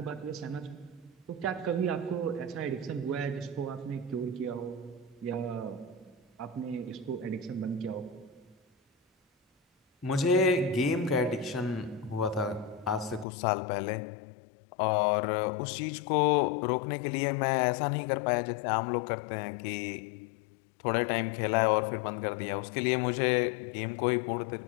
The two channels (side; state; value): right; drops out; at 13.2 s